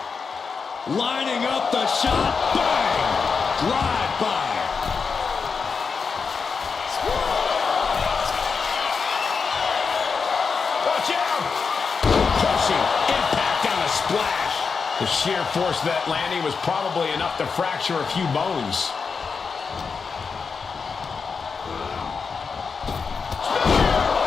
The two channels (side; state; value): right; quieter; 5.3 dB